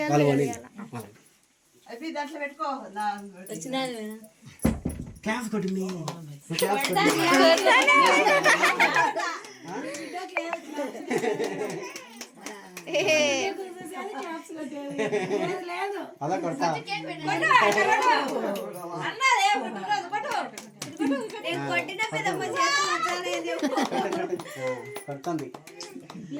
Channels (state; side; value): identical; both; correlation 1.00